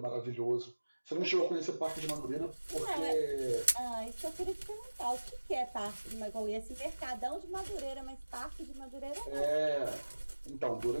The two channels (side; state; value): both; inverted; correlation -1.00